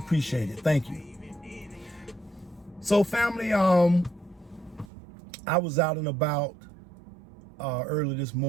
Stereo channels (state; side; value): drops out; left; at 4.9 s